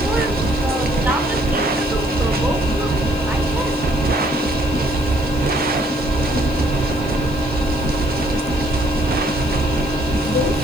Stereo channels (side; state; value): left; noise; hiss, 22 dB below the sound